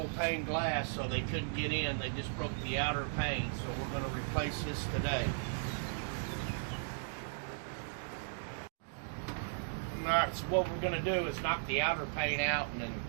pane glass, so they couldn't get in. They just broke the outer pane, so we're going to replace this today. Alright, so what we're going to do is knock the outer pane out and then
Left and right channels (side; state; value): left; silent; digital silence